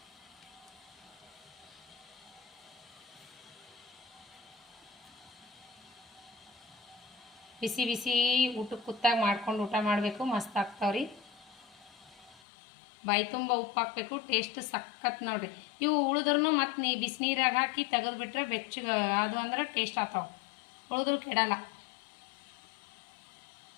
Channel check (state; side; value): drops out; right; at 12.4 s